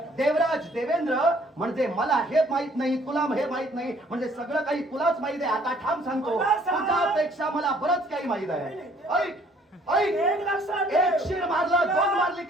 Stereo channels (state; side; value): normal; both; correlation 0.60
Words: देवराज देवेंद्र म्हणजे मला हे माहित नाही, तुला हे माहित नाही, म्हणजे सगळं काही तुलाच माहित आहे. आता ठाम सांगतो, मला सांग. तुझ्यापेक्षा मला बरंच काही माहित आहे. ऐक ऐक, एक लक्षात ठेव. एक शिर मारला, 2 मारली